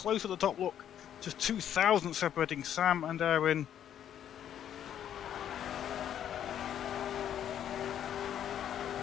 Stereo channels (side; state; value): right; quieter; 10.0 dB